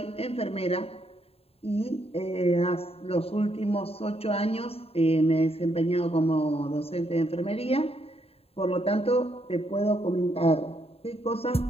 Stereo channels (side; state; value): right; late; 0.28 ms